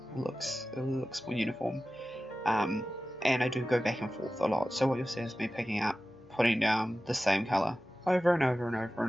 It looks more uniform. And I do go back and forth a lot, so what you'll see is me picking up, putting down the same colour over and over and over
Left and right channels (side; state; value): left; noise; hum, 30 dB below the sound